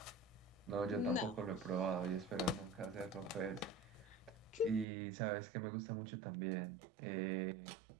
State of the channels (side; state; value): left; drops out; at 4.9 s